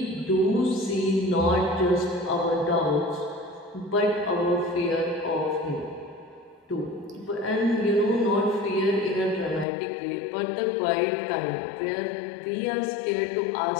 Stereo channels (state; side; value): drops out; right; at 9.7 s